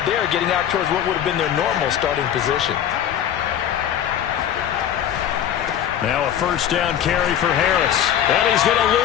there getting out towards what would have been their normal starting position. Now a first down carry for Harris. And he's going to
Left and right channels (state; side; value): quieter; right; 10.1 dB